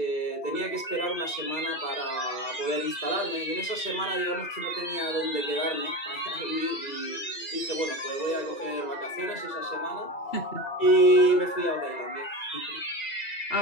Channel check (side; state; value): right; late; 2.4 ms